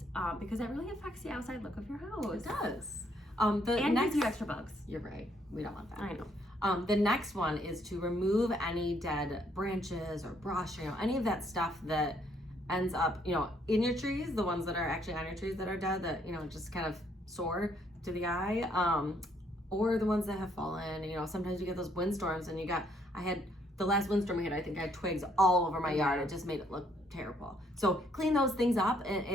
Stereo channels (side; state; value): both; normal; correlation 0.69